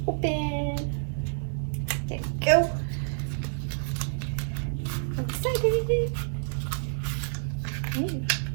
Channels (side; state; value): left; silent; 58 dB below the other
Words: Open. There you go. I'm excited.